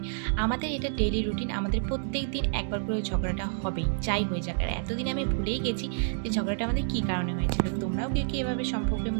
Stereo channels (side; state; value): left; silent; digital silence